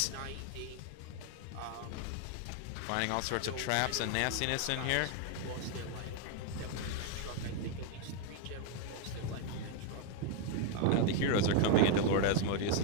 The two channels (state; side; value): different; both; correlation 0.01